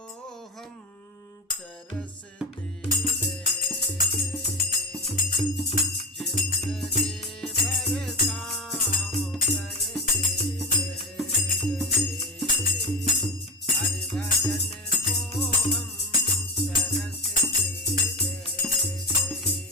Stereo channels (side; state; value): both; normal; correlation 0.19